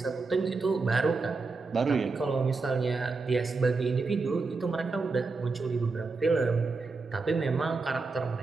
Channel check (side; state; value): left; quieter; 4.1 dB